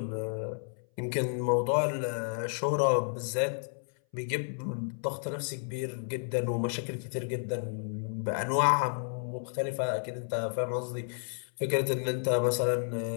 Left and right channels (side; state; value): right; silent; 57 dB below the other